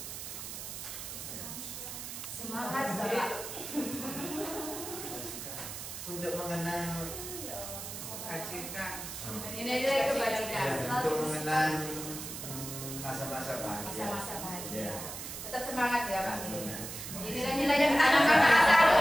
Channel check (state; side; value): noise; right; hiss, 8 dB below the sound